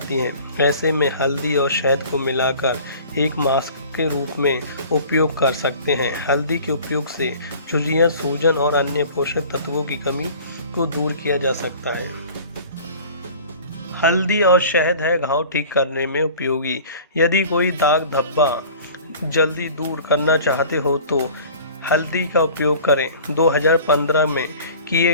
हैं। ऐसे में हल्दी और शहद को मिलाकर एक मास्क के रूप में उपयोग कर सकते हैं। हल्दी के उपयोग से झुर्रियाँ, सूजन और अन्य पोषक तत्वों की कमी को दूर किया जा सकता है। हल्दी और शहद है घाव ठीक करने में उपयोगी। यदि कोई दाग धब्बा जल्दी दूर करना चाहते हो तो हल्दी का उपयोग करें। 2015 में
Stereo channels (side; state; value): both; inverted; correlation -0.45